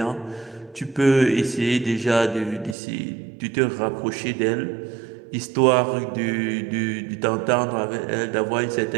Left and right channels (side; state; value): left; drops out; at 2.8 s